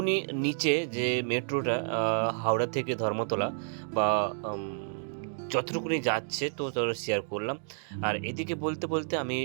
নিচে যে মেট্রোটা হাওড়া থেকে ধর্মতলা বা যতটুকুনি যাচ্ছে তো শেয়ার করলাম। আর এদিকে বলতে বলতে আমি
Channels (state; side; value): silent; left; digital silence